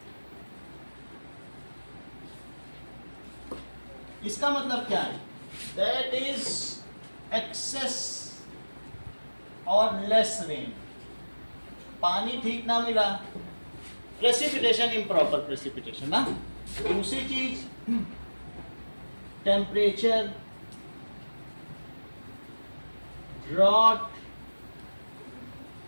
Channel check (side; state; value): both; inverted; correlation -1.00